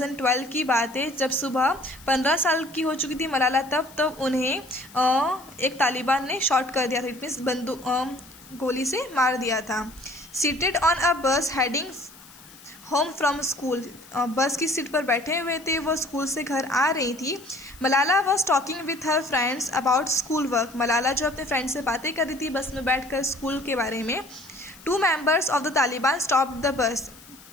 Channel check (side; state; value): left; noise; hiss, 22 dB below the sound